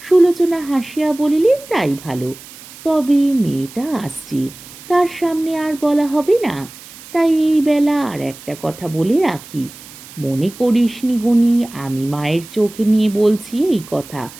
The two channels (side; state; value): right; noise; hiss, 18 dB below the sound